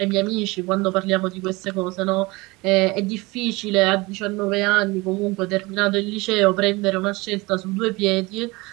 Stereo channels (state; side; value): quieter; left; 23.6 dB